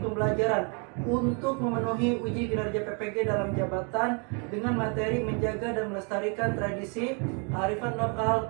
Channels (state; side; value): quieter; left; 35.9 dB